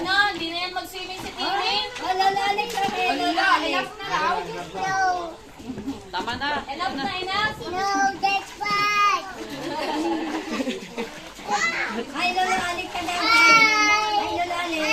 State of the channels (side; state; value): both; identical; correlation 1.00